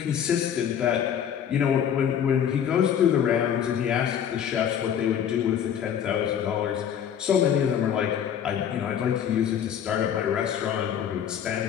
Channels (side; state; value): right; quieter; 8.9 dB